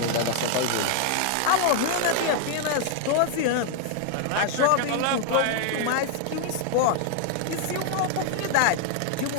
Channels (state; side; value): different; both; correlation 0.00